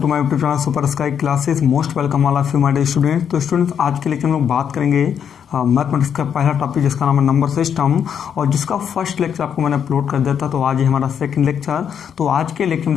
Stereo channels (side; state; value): right; quieter; 8.1 dB